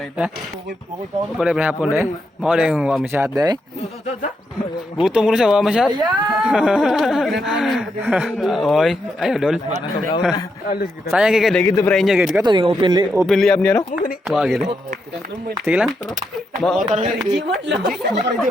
Pwede pa hapon deh. Mau deh yung wama shot deh. Gutom ko na siya wama shot. Oy, ayo dol. Sayang kayak gitu pre-nya gitu. Kato yung open layup niya no. Wah gitu. Sige lang. Mau Jimon lang.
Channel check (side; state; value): both; normal; correlation 0.82